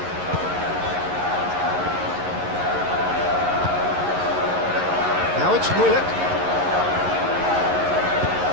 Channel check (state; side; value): late; left; 11 ms